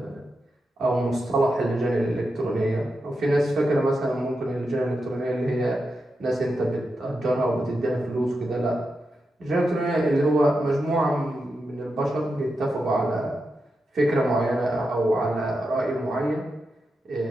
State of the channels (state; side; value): normal; both; correlation 0.88